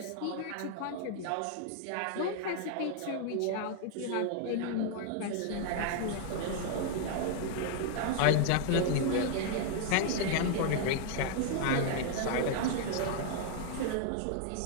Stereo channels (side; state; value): both; different; correlation 0.00